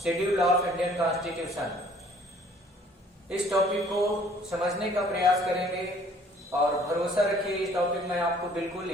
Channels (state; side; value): normal; both; correlation 0.57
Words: शेड्यूल ऑफ इंडियन कॉन्स्टिट्यूशन। इस टॉपिक को समझने का प्रयास करेंगे और भरोसा रखिए, इस टॉपिक में आपको बिल्कुल